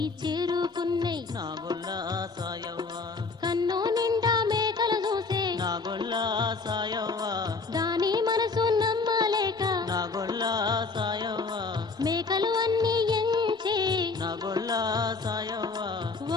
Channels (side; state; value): right; quieter; 4.2 dB